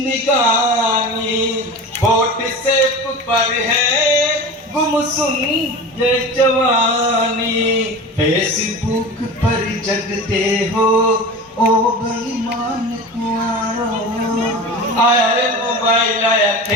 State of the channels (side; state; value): both; normal; correlation 0.32